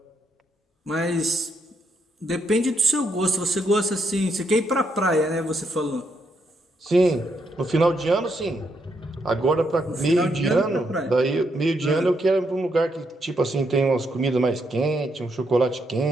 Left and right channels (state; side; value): normal; both; correlation 0.78